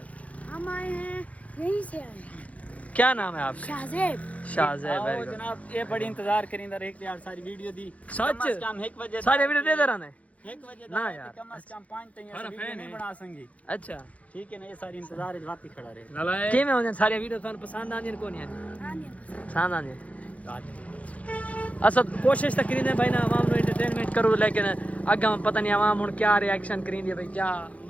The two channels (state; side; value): late; right; 0.067 ms